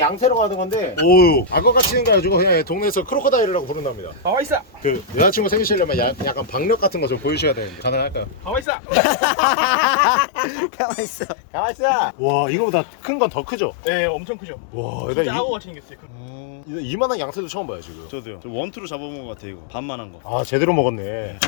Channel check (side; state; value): right; drops out; at 8.7 s